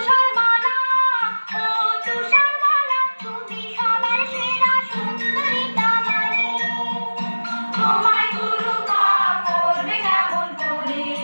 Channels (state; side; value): inverted; both; correlation -1.00